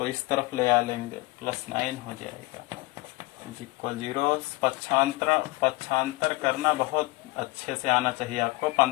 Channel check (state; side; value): quieter; right; 21.6 dB